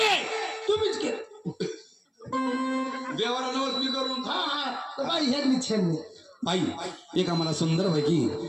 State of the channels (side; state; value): both; identical; correlation 1.00